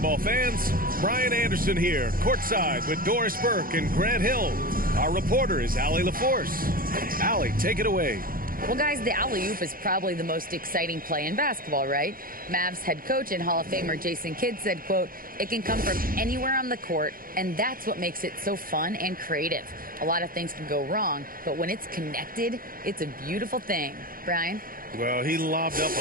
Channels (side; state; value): left; late; 0.41 ms